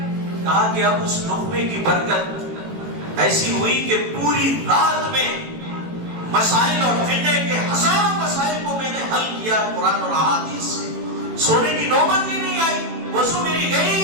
کہا کہ اب اس لقمے کی برکت ایسی ہوئی کہ پوری رات میں مسائل اور فقہ کے ہزاروں مسائل کو میں نے حل کیا قرآن اور احادیث سے. سونے کی نوبت ہی نہیں آئی, وضو میری گئی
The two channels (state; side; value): late; left; 18 ms